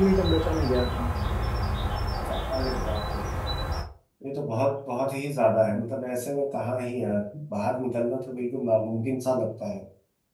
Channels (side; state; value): both; identical; correlation 1.00